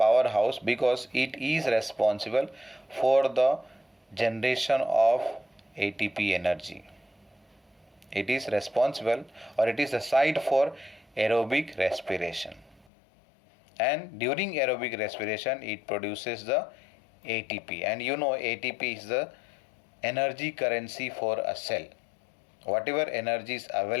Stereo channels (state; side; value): drops out; right; at 12.9 s